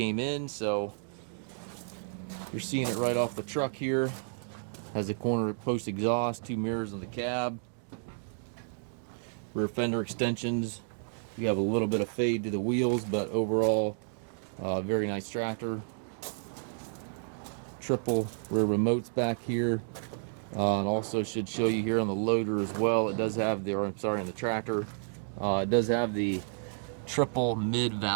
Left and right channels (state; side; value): silent; left; digital silence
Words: in, so you're seeing it right off the truck here. Has a corner post exhaust, two mirrors on the cab, rear fender extensions. You have a little bit of fade to the wheels, but overall, very nice tractor. Triple rear remotes back here, and also should show you here on the loader as well. It does have the, or I'm sorry, on the tractor, it does have the triple mid